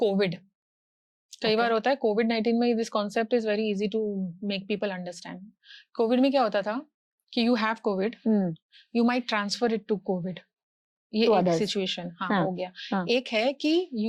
COVID. कई बार होता है COVID-19 में, this concept is very easy to make people understand. COVID में क्या होता था कि you have COVID, you might transfer it to COVID. ये To एक others. सिचुएशन हाँ, हो गया। हाँ. एक है कि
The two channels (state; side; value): identical; both; correlation 1.00